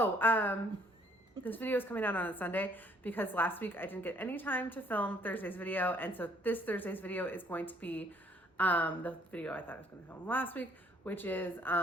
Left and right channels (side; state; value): both; normal; correlation 0.63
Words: this video is coming out on a Sunday because last week I didn't get any time to film Thursday's video. And so this Thursday's video is going to be the video I thought I was going to film last week, which is